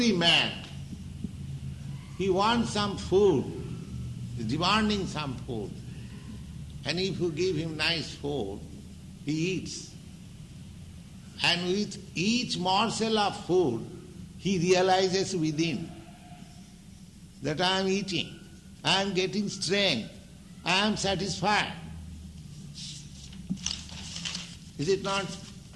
man, he wants some food, is demanding some food, and if you give him nice food, he eats. And with each morsel of food, he realizes within. that I am eating, I am getting strength, I am satisfied. Is it not?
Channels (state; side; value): identical; both; correlation 1.00